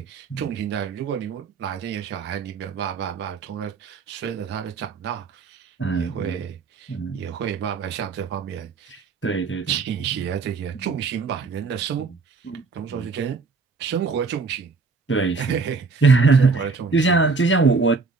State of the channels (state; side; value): quieter; left; 4.5 dB